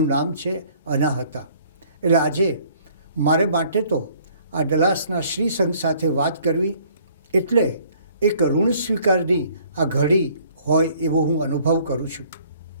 નામ છે અનાહતા. એટલે આજે મારે માટે તો આ ડલાસના શ્રી સંઘ સાથે વાત કરવી એટલે એક ઋણ સ્વીકારની આ ઘડી હોય એવો હું અનુભવ કરું છું.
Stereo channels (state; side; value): inverted; both; correlation -0.58